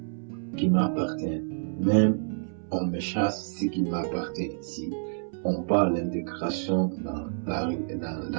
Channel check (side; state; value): left; silent; 59 dB below the other